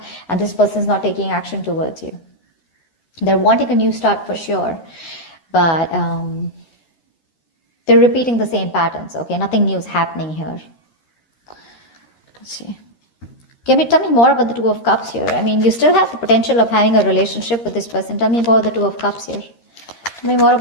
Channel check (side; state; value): right; late; 13 ms